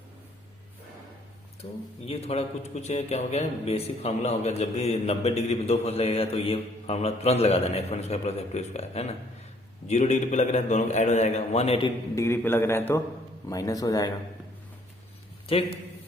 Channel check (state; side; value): normal; both; correlation 0.63